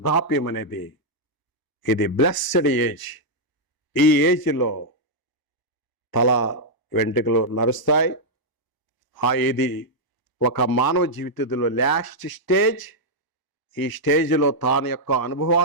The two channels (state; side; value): late; right; 1.0 ms